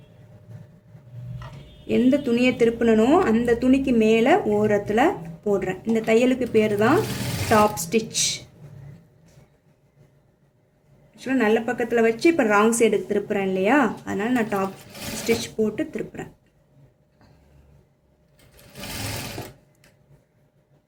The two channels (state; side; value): identical; both; correlation 1.00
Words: எந்த துணியை திருப்பினோ அந்த துணிக்கு மேலே ஓரத்தில் போடுறேன். இந்த தையலுக்கு பேர் தான் டாப் ஸ்டிச். ஆக்சுவலாக நல்ல பக்கத்தில் வச்சு இப்போ ராங் சைடுக்கு திருப்புறேன் இல்லையா, அதனால் நான் டாப் ஸ்டிச் போட்டு திருப்புறேன்.